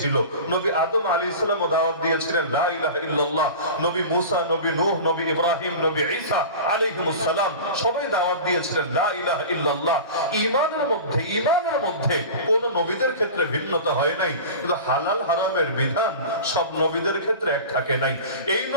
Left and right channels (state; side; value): inverted; both; correlation -0.34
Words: নবী আদম আলাইহিস সালাম দাওয়াত দিয়েছিলেন লা ইলাহা ইল্লাল্লাহ। নবী মুসা, নবী নূহ, নবী ইব্রাহিম, নবী ঈসা আলাইহিমুস সালাম সবাই দাওয়াত দিয়েছিলেন লা ইলাহা ইল্লাল্লাহ। ঈমানের মধ্যে কোন নবীদের ক্ষেত্রে ভিন্নতা হয় নাই, কিন্তু হালাল হারামের বিধান সব নবীদের ক্ষেত্রে এক থাকে নাই। এই